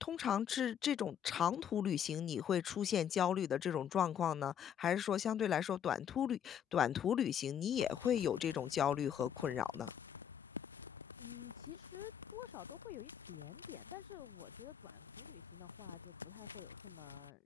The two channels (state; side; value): quieter; right; 9.0 dB